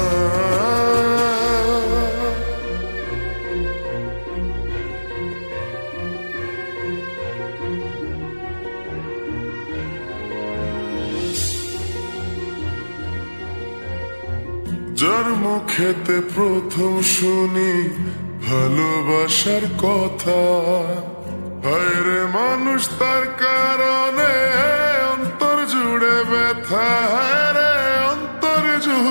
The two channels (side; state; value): both; inverted; correlation -1.00